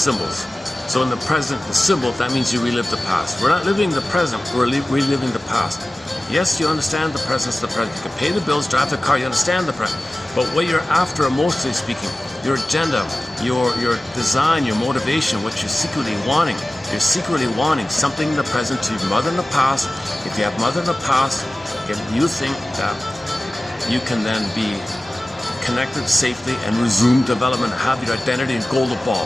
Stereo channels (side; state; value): both; normal; correlation 0.96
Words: So in the present, the symbol, that means you relive the past. We're not living the present, we're reliving the past. Yes, you understand the presence of the present. You can pay the bills, drive the car, you understand the present. But what you're after, emotionally speaking, your agenda, your design, your motivation, what you're secretly wanting. You're secretly wanting something in the present to your mother in the past. If you have mother in the past, you think that you can then be connected safely and resume development, have your identity and golden ball.